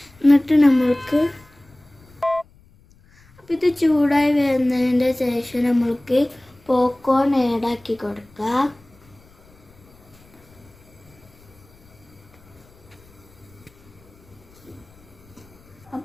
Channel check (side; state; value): left; noise; rumble, 28 dB below the sound